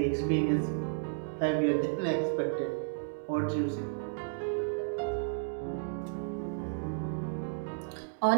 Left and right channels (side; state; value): left; silent; digital silence